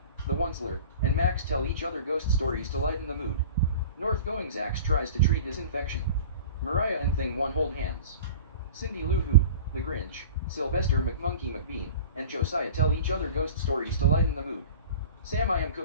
the Onceler, and Max tell each other ghost stories to lighten the mood. Northgoing Zax tries to treat his infection. Mariah and Thing 1 hold hands. Cindy Lou Who, the Grinch, Sylvester McMonkey McBean, and Josiah tell each other ghost stories to lighten the mood. Sam I Am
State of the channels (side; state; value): both; inverted; correlation -0.39